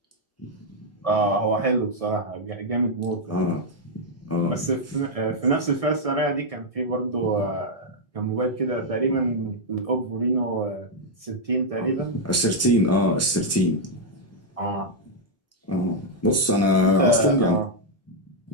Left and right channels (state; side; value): normal; both; correlation -0.02